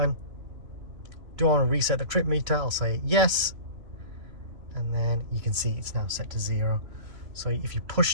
Do I want to reset the trip meter? I'll say yes, and then you can see it's now set to 0. So if you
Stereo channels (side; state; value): left; late; 3.0 ms